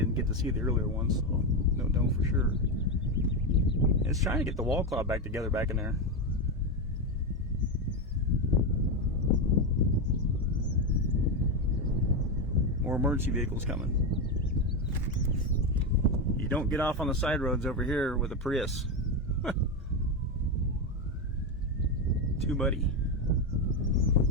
get to see the earlier ones, so don't know for sure. It's trying to get the wall cloud back together back in there. More emergency vehicles coming. You don't get off on the side roads over here with a Prius. Too muddy.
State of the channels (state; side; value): normal; both; correlation 0.11